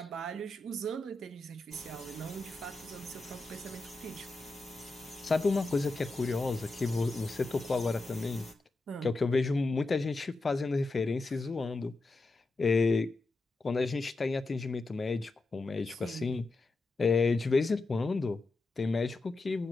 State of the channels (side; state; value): right; quieter; 3.2 dB